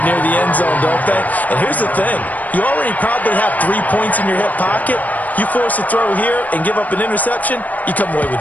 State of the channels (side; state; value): right; late; 0.077 ms